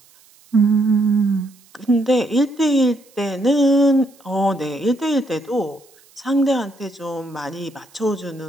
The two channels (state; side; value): noise; right; hiss, 29 dB below the sound